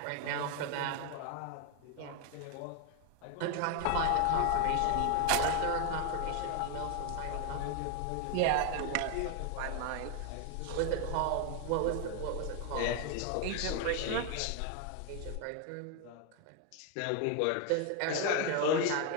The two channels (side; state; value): both; different; correlation 0.01